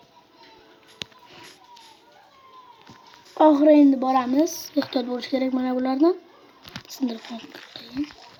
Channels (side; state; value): both; identical; correlation 1.00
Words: Oxiri endi boramiz. Ehtiyot bo'lish kerak mana bulardan. Sindirib qo'ying.